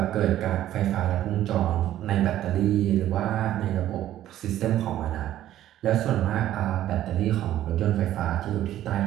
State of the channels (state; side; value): quieter; left; 12.8 dB